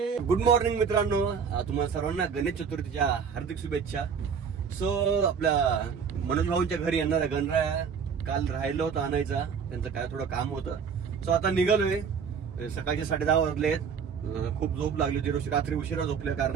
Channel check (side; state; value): left; quieter; 6.5 dB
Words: गुड मॉर्निंग मित्रांनो, तुम्हाला सर्वांना गणेश चतुर्थीच्या हार्दिक शुभेच्छा. सो आपल्या मनोज भाऊंच्या घरी येणारा गणराया काल राहिलं होतं आणायचा, त्यांचं काय थोडं काम होतं. सो आता निघालोय. सकाळचे 10:30 वाजलेत. खूप झोप लागली होती, रात्री उशिरा झोपल्या